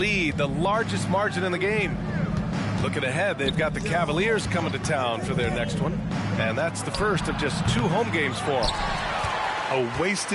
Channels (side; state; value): both; identical; correlation 1.00